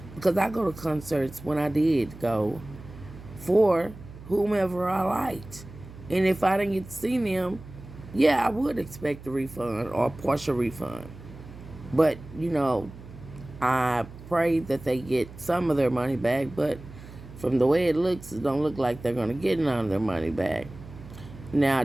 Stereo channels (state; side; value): noise; right; hum, 16 dB below the sound